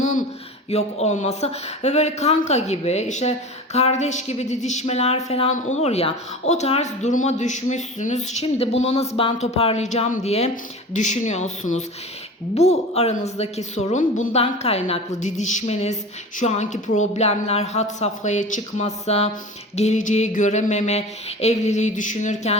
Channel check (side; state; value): both; normal; correlation 0.34